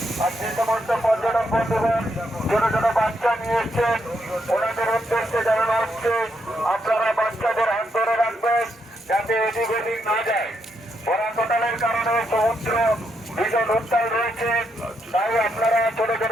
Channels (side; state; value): both; normal; correlation 0.79